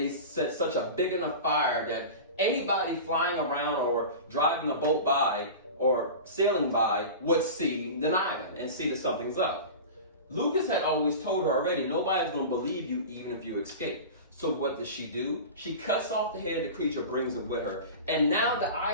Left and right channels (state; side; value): inverted; both; correlation -0.31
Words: set such a big enough fire that anybody flying around or driving a boat by or sailing by would see the island and see that something's up. Lucas had always told her already, nobody's gonna believe you even if you escape. So what does she do? She cuts off the head of the creature, brings it with her. And now the